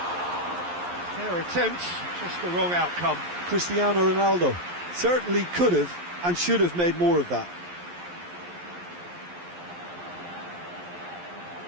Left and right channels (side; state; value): left; late; 11 ms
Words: Fair attempt, just the wrong outcome. Cristiano Ronaldo certainly could have and should have made more of that.